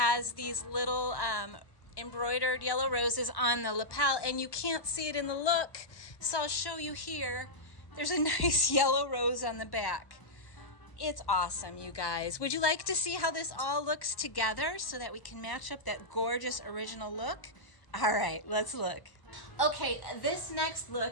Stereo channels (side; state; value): right; late; 1.1 ms